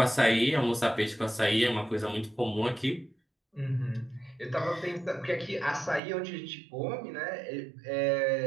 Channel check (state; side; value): drops out; left; at 6.0 s